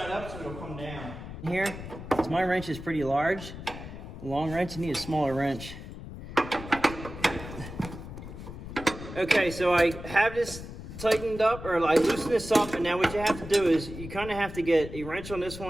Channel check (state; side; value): noise; left; rumble, 11 dB below the sound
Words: up so it'll come down. Here, because my wrench is pretty large. A long wrench, you need a smaller wrench. Okay, so I have this tightened up, or I loosen this up, and now what you have to do is you kind of have to get a wrench on this